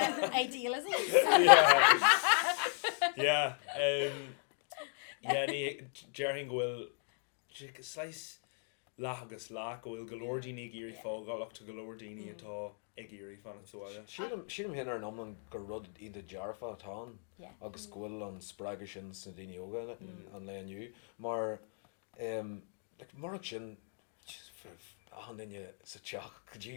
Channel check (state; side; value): silent; right; 53 dB below the other